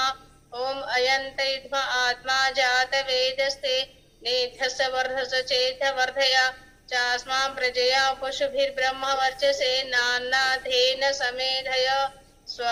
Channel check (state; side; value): identical; both; correlation 1.00